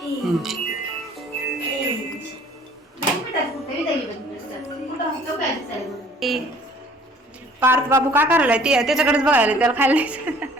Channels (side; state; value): both; normal; correlation 0.54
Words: पार्थ बाबू काय करायला ते त्याच्याकडेच बघायला त्याला खायला द्यायचं.